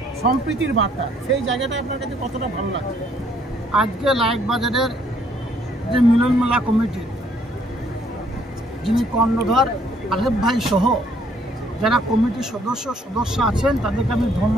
সম্প্রীতির বার্তা, সেই জায়গাটা আপনার কাছে কতটা ভালো লাগছে? আজকে লায়েকবাজারের যে মিলন মেলা কমিটি, যিনি কর্ণধার আলেফ ভাই সহ যারা কমিটির সদস্য আছেন, তাদেরকে আমি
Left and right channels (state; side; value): normal; both; correlation 0.65